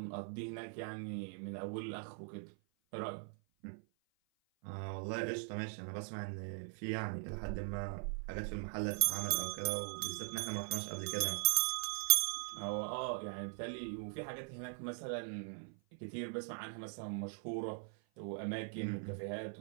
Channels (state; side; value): silent; left; 50 dB below the other